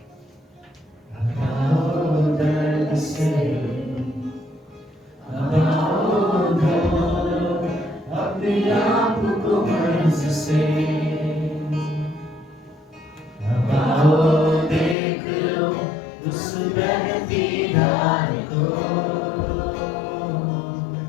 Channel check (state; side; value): drops out; right; at 15.0 s